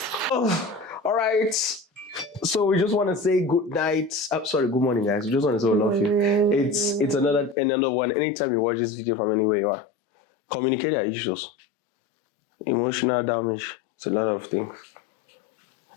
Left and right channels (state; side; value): drops out; right; at 7.6 s